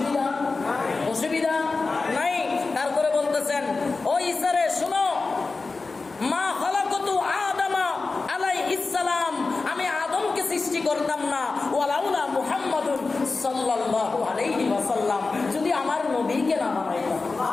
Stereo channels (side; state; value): right; quieter; 3.9 dB